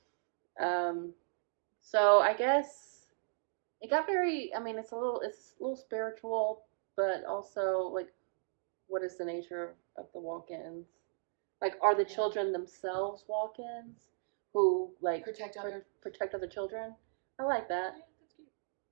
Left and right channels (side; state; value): left; silent; digital silence